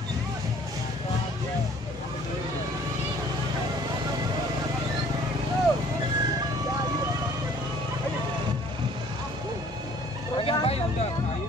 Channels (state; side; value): normal; both; correlation 0.55